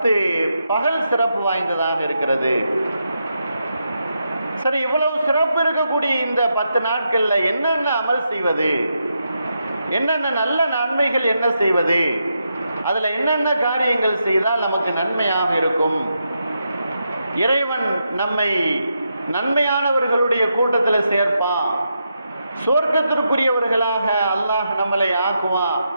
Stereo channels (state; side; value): inverted; both; correlation -0.84